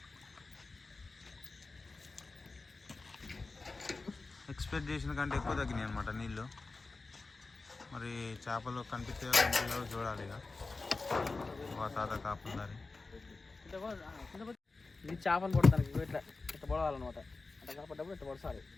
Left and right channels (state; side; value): quieter; right; 3.7 dB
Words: ఎక్స్పెక్ట్ చేసిన కంటే ఎక్కువ తగ్గినాయి అనమాట నీళ్ళు. మరి చేపలు కనిపించే చూడాలి. ఇక మా తాత కాపుండాలి. ఇది చేపలు పడతానికి ఇట్లా ఇట్లా పొడవాలన్నమాట. అట్లా కాపడ్డప్పుడు ఇట్లా పొడసాలి.